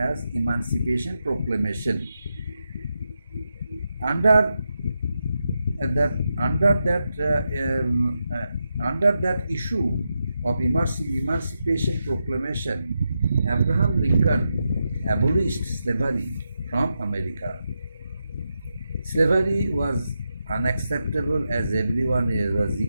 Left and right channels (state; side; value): inverted; both; correlation -0.87